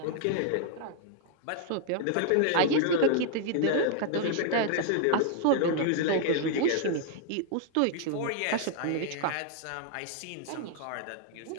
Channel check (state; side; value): different; both; correlation 0.00